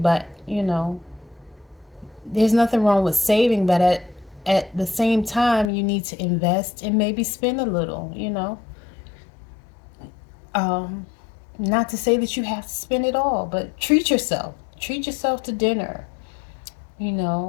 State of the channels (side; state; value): right; drops out; at 5.7 s